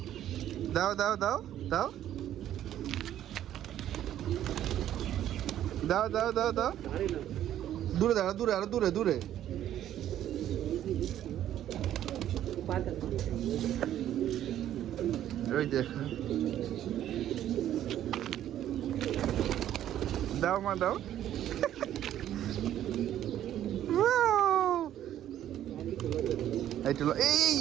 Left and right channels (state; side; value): quieter; left; 11.7 dB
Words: দাও দাও দাও দাও দাও দাও দাও দাও। দূরে দাও, দূরে, আরো দূরে, দূরে। ওই দেখো, দাও মা দাও। এই